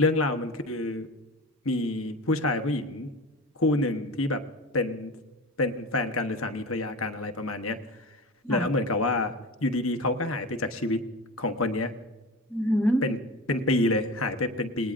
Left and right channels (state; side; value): normal; both; correlation 0.31